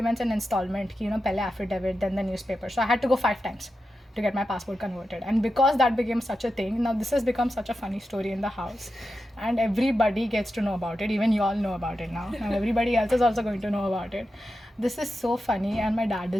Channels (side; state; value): both; normal; correlation 0.90